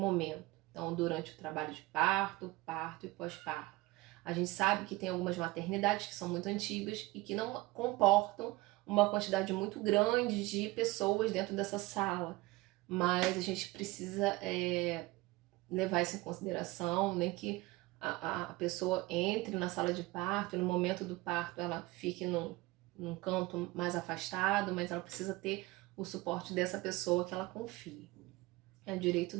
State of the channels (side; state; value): left; quieter; 20.9 dB